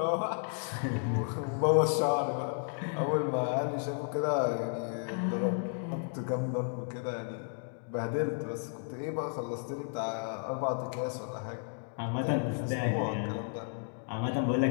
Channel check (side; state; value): right; silent; 56 dB below the other